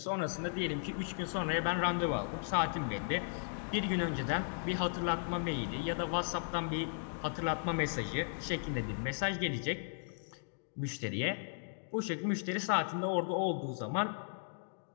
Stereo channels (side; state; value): right; silent; digital silence